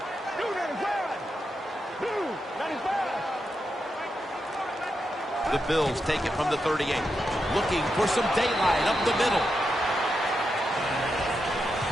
The Bills take it from the 38. Looking for some daylight up the middle.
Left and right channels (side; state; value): both; normal; correlation 0.86